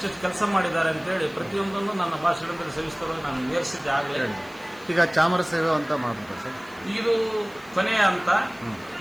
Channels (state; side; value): noise; left; hiss, 26 dB below the sound